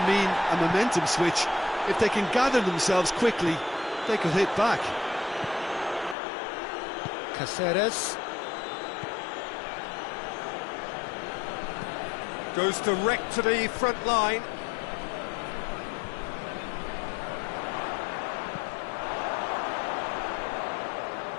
a momentum switch. If they can gather themselves quickly, they could hit back. Caceres. Goes direct to the front line.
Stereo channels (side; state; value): right; drops out; at 6.2 s